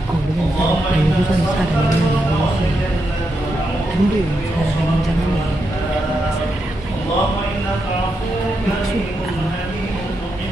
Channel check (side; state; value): both; normal; correlation 0.84